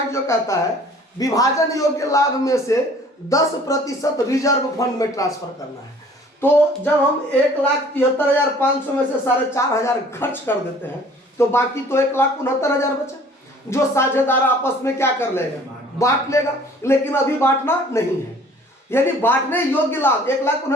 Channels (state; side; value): normal; both; correlation 0.52